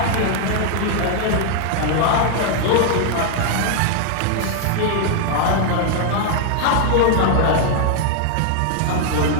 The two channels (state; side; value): different; both; correlation 0.00